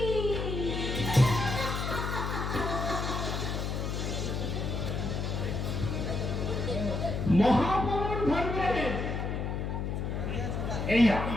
মহাপ্রভুর ধর্মে এই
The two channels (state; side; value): noise; left; hum, 2 dB below the sound